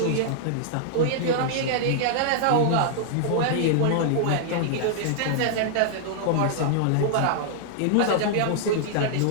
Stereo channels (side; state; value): both; different; correlation -0.01